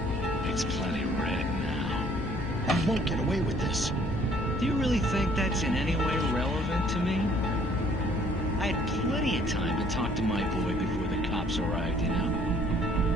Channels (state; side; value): normal; both; correlation 0.60